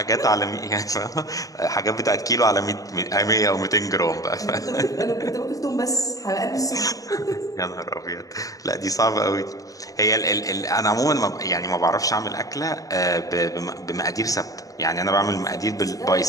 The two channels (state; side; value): late; right; 0.17 ms